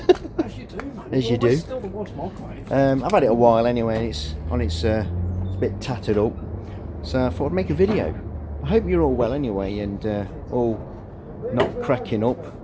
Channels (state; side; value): identical; both; correlation 1.00